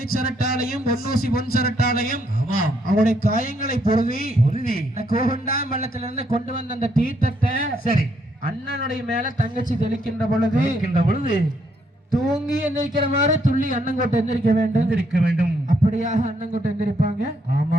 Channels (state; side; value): normal; both; correlation 0.73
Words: பொன்னூசி பொன் சரட்டாலையும் அவருடைய காயங்களை பொருவி கோகண்டாம் பள்ளத்திலிருந்து கொண்டு வந்த அந்த தீர்த்தத்தை சரி அண்ணனுடைய மேல தங்கச்சி தெளிக்கின்ற பொழுது தூங்கி எந்திரிக்கிற மாதிரி துள்ளி அண்ணங்கோட்டை எந்திரிக்க வேண்டும் அப்படியாக அண்ணங்கோட்டை எந்திரிப்பாங்க